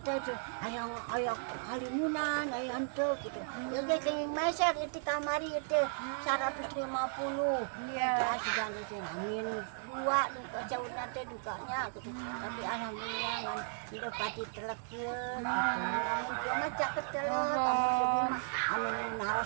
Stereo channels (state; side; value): silent; left; digital silence